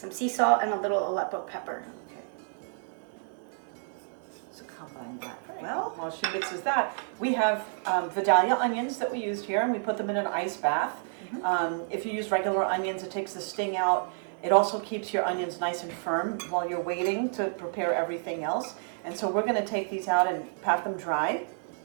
sea salt, and a little Aleppo pepper. Okay. So combine that. Well, while she mixes that, we have Vidalia onions that we used here, and we put them in an ice bath. If you use regular onions, it takes the sting out. It also keeps your onions nice and firm while you're waiting to prepare everything else. And so we're going to take these out and pat them dry.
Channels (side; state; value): left; silent; 58 dB below the other